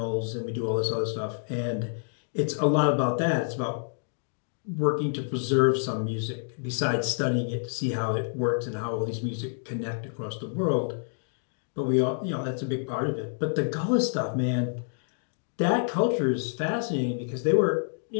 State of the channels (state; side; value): silent; right; digital silence